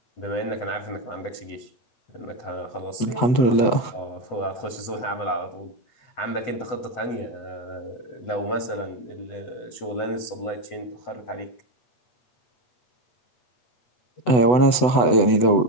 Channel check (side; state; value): right; late; 8.0 ms